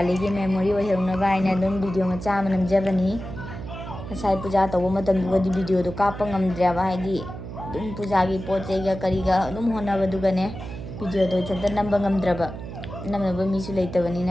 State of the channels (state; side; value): noise; right; hum, 10 dB below the sound